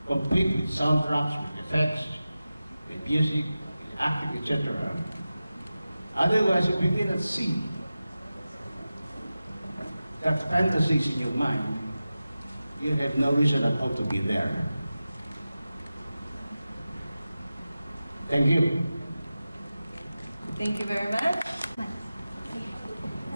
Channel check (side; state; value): both; inverted; correlation -0.94